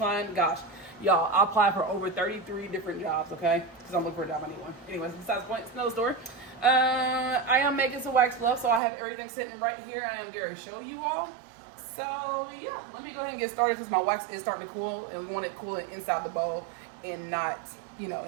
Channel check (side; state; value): left; drops out; at 8.8 s